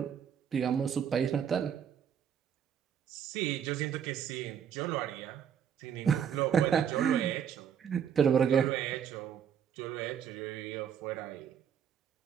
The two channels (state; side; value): quieter; left; 8.3 dB